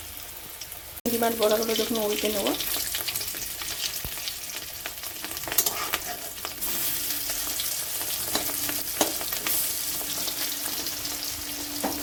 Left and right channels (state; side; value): identical; both; correlation 1.00